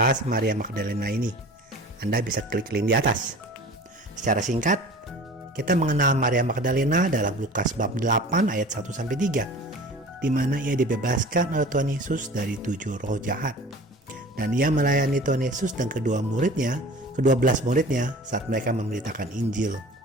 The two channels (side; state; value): both; normal; correlation 0.41